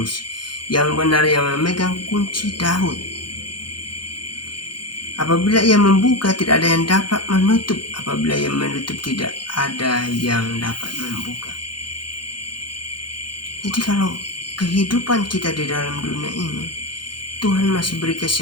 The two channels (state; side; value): late; right; 0.71 ms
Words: yang benar, yang memegang kunci Daud. Apabila ia membuka, tidak ada yang dapat menutup. Apabila ia menutup, tidak ada yang dapat membuka. Jadi kalau kehidupan kita di dalam dunia ini, Tuhan masih beri